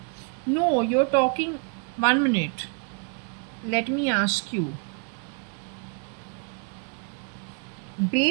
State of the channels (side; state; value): left; quieter; 38.7 dB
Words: No, you're talking. 1 minute. Let me ask you.